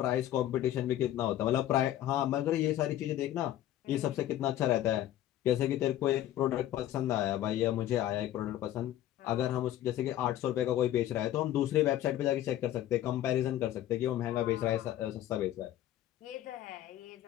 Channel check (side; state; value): right; quieter; 12.8 dB